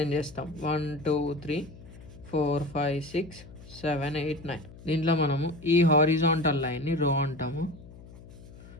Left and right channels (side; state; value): left; noise; hum, 18 dB below the sound